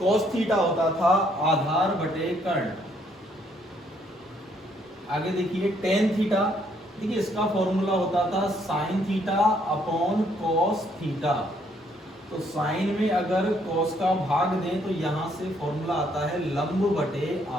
थीटा होता था आधार बटे कर्ण। आगे देखिए टेन थीटा। देखिए, इसका फॉर्मूला होता था sine theta upon cos theta. तो साइन में अगर कॉस का भाग दें तो यहां से फॉर्मूला आता है लंब बटे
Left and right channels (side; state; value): both; normal; correlation 0.68